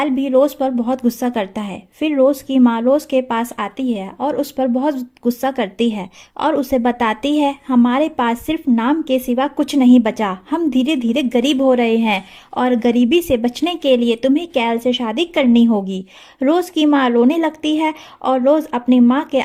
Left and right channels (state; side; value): identical; both; correlation 1.00